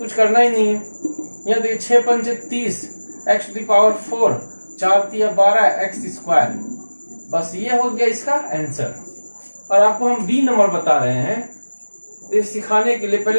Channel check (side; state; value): both; inverted; correlation -1.00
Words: करना ही नहीं है। यहाँ देखिए 6 × 5 = 30, x⁴ 4, 4 × 3 = 12 x²। बस ये हो गया इसका आंसर। और आपको हम b नंबर बता रहे हैं, तो सिखाने के लिए